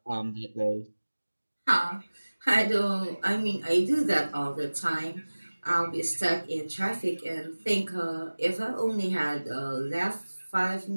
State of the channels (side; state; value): both; inverted; correlation -1.00